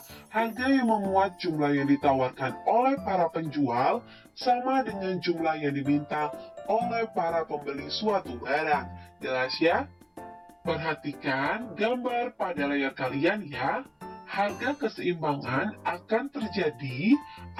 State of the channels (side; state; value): both; identical; correlation 1.00